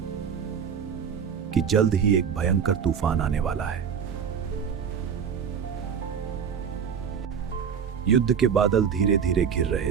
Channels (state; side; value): quieter; left; 7.2 dB